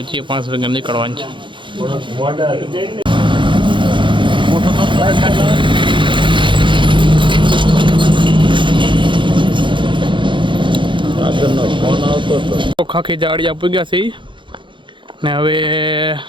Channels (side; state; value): left; late; 0.23 ms